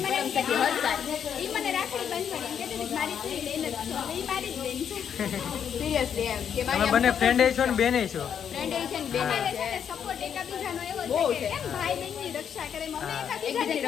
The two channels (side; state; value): right; quieter; 8.2 dB